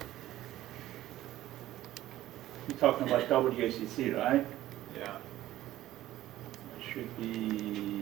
You're talking about WACC, right? Yeah. It should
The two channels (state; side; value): quieter; left; 14.5 dB